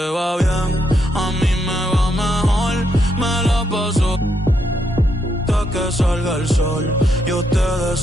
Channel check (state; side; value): normal; both; correlation 0.78